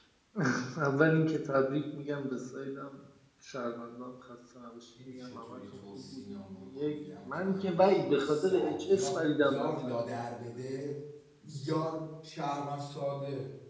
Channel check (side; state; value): both; identical; correlation 1.00